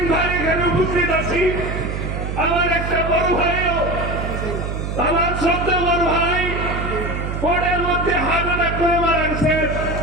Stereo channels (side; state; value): right; noise; hum, 4 dB below the sound